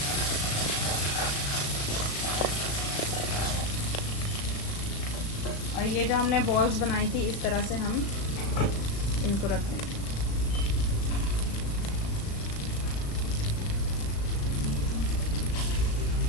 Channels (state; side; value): late; right; 36 ms